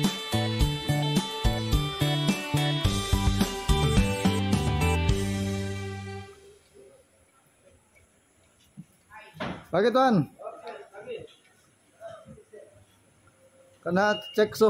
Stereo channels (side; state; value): both; identical; correlation 1.00